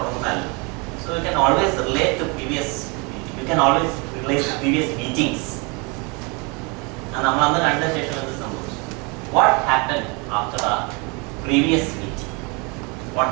So you can always relate to previous. You can always relate to previous meetings. And what happened after our previous meeting? What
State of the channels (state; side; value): quieter; left; 30.4 dB